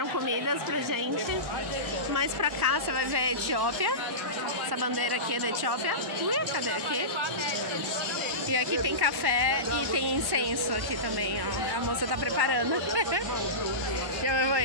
comidas pra gente. Mais pra cá você vai ver a Etiópia. Essa bandeira aqui é da Etiópia. Cadê aqui? E aqui tem café e tem incenso aqui também, ó. A moça tá preparando. Já me vou.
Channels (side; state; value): left; late; 1.1 ms